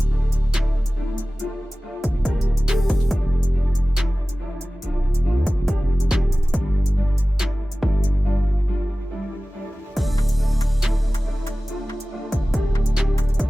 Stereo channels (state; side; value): normal; both; correlation 0.97